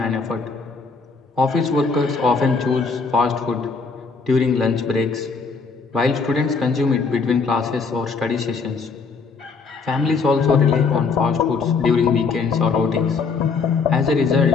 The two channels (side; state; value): right; quieter; 4.8 dB